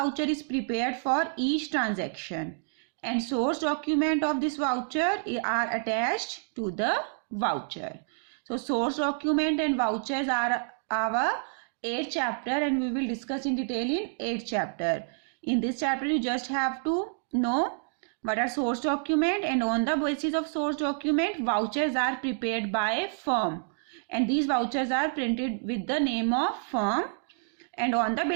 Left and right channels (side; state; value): left; silent; digital silence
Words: is prepared for each transaction, and source document of this voucher are attached to the voucher. So source document and vouchers are our 8th chapter, and we will discuss in detail in 8th chapter. In this chapter you just have to know what are source document, and on the basis of source document vouchers are prepared by a firm, and these vouchers are printed with the name of firm, and on the